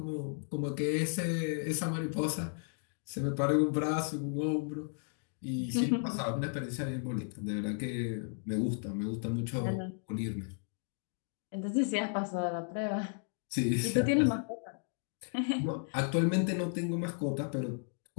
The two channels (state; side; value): silent; right; 55 dB below the other